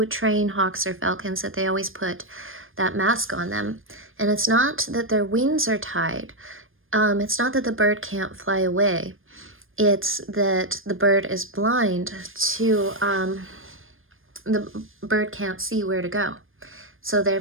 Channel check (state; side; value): late; left; 0.59 ms